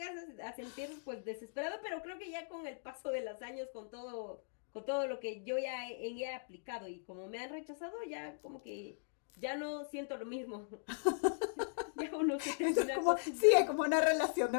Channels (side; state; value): right; silent; digital silence